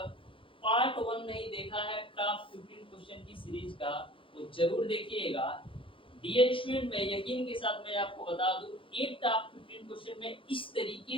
पार्ट 1 नहीं देखा है टॉप 15 क्वेश्चन की सीरीज का, वो जरूर देखिएगा। डियर स्टूडेंट, मैं यकीन के साथ मैं आपको बता दूं, एक टॉप 15 क्वेश्चन में इस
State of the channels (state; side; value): late; right; 0.25 ms